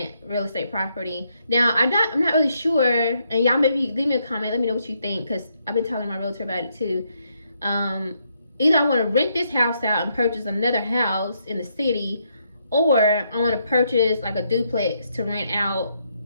real estate property. Now, I'm not really sure, and y'all maybe leave me a comment, let me know what you think, because I've been talking to my realtor about it too. Either I want to rent this house out and purchase another house in the city, or I want to purchase like a duplex to rent out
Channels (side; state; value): both; inverted; correlation -0.76